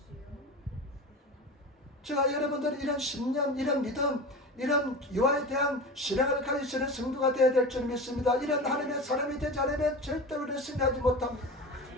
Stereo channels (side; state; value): both; normal; correlation 0.30